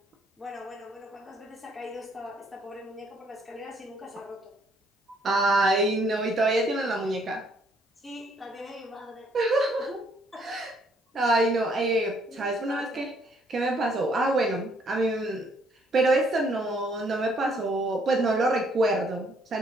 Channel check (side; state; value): both; normal; correlation 0.66